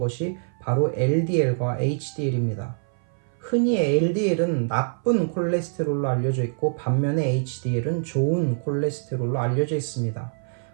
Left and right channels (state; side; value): silent; left; 56 dB below the other